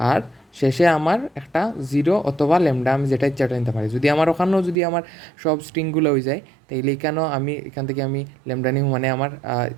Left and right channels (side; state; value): left; drops out; at 4.8 s